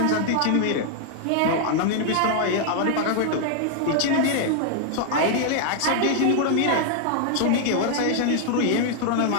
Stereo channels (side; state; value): both; different; correlation 0.00